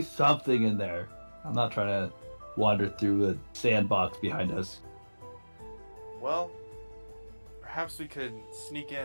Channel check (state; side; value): inverted; both; correlation -1.00